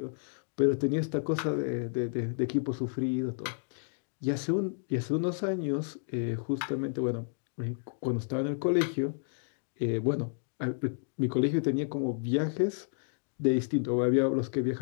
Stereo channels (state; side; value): silent; right; digital silence